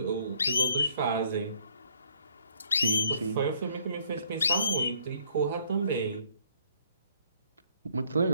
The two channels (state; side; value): inverted; both; correlation -0.65